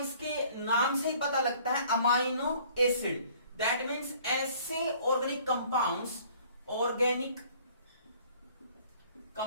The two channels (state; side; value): inverted; both; correlation -0.55